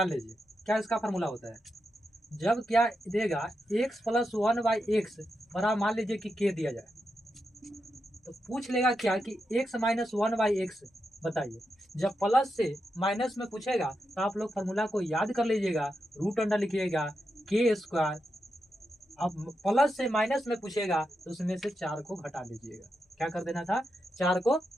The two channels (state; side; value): normal; both; correlation 0.86